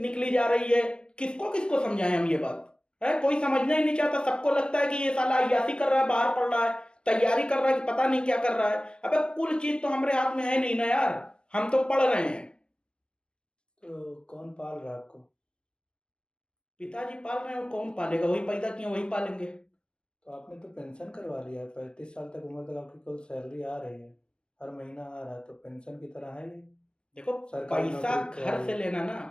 निकली जा रही है। किसको किसको समझाएं हम ये बात? है, कोई समझना ही नहीं चाहता। सबको लगता है कि ये साला अय्यासी कर रहा है, बाहर पढ़ रहा है, तैयारी कर रहा है कि पता नहीं क्या कर रहा है। अबे कुल चीज तो हमारे हाथ में है नहीं ना यार, हम तो पढ़ रहे हैं। तो कौन पाल रहा है आपको? पिताजी पाल रहे हैं, और कौन पालेगा? वही पैदा किए वही पालेंगे। तो आपने तो पेंशन करवा लिया है, 35 साल तक उम्र तक आपकी कुल सैलरी आ रही है, हर महीना आ रहा है, तो पेंशन की तरह है ये। देखो, सरकारी पैसा नौकरी की घर तैयारी से है। लेना ना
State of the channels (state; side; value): late; right; 0.051 ms